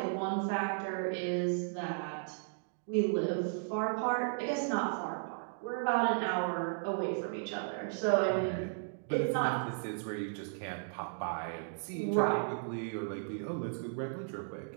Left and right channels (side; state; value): left; silent; digital silence